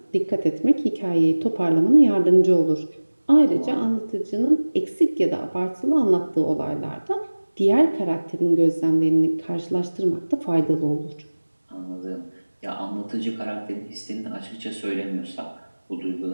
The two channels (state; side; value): inverted; both; correlation -1.00